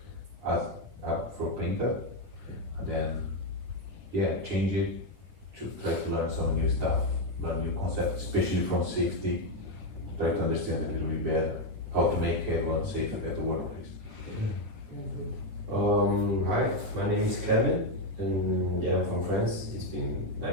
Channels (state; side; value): late; left; 9.7 ms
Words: for painter, and then change it to try to learn some new stuff, learn new concepts, especially from safety. Try to understand a little bit better how to make everyone safe at the workplace. Hi, my name is Kevin, and I'm from France. It's been